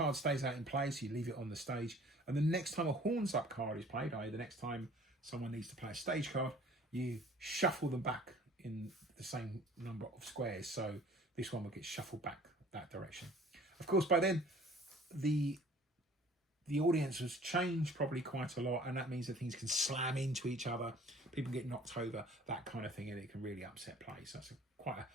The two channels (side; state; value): both; normal; correlation 0.51